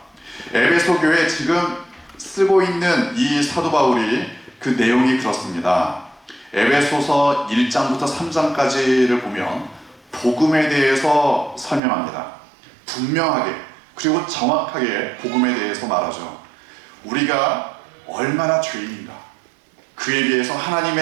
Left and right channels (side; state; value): left; drops out; at 11.8 s